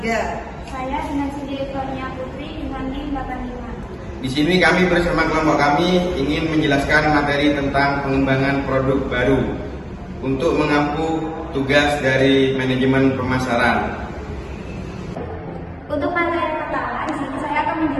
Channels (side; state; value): both; identical; correlation 1.00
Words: Saya Dinasi Direktornya Putri dengan NIM 85. Di sini kami bersama kelompok kami ingin menjelaskan materi tentang pengembangan produk baru untuk mengampu tugas dari manajemen pemasaran. Untuk materi pertama, di sini saya akan